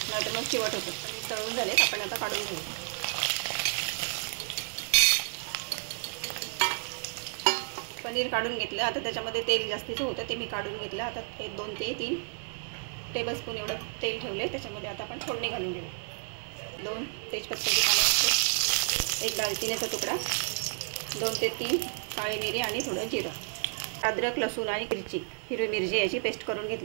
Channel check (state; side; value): silent; left; 55 dB below the other